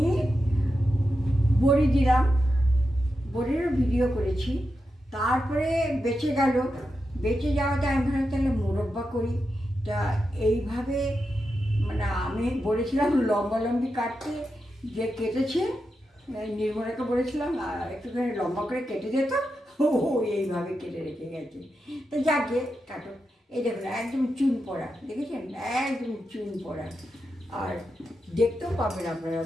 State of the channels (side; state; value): both; normal; correlation 0.88